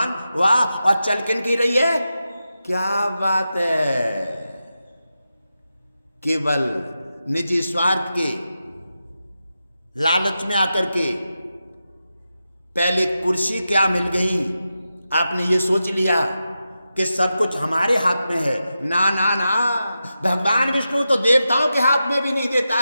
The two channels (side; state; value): both; inverted; correlation -0.90